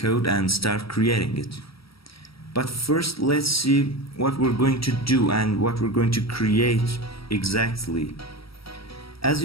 and start creating it. But first, let's see what we're going to do and what we're going to create exactly. As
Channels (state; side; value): late; right; 0.75 ms